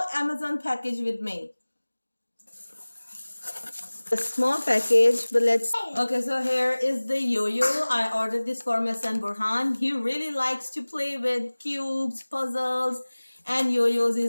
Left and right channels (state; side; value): inverted; both; correlation -1.00